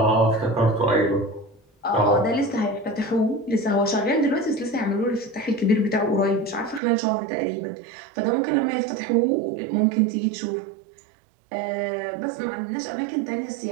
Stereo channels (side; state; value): left; drops out; at 6.8 s